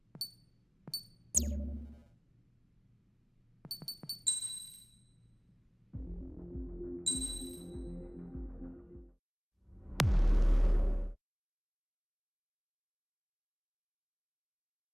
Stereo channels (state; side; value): identical; both; correlation 1.00